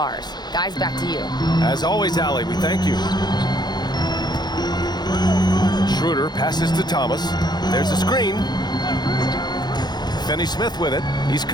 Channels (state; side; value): late; right; 0.20 ms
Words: Guys, back to you. As always, Allie, we thank you. Schroeder passes to Thomas. There's a screen. Finney-Smith with it. He's